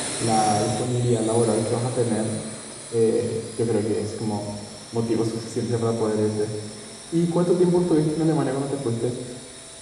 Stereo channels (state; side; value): identical; both; correlation 1.00